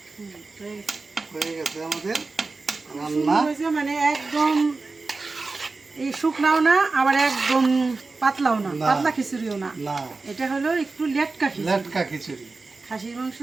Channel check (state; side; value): quieter; left; 3.8 dB